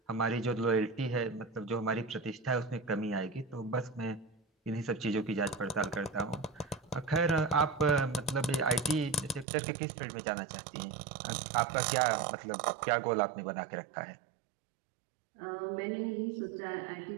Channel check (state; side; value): drops out; left; at 9.5 s